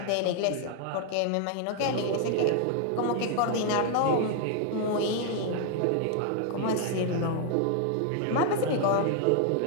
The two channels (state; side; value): different; both; correlation 0.00